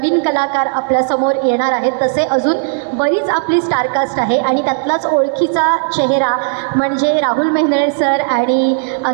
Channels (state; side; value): silent; left; digital silence